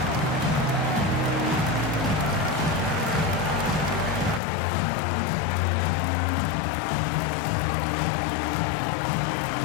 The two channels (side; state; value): right; drops out; at 4.4 s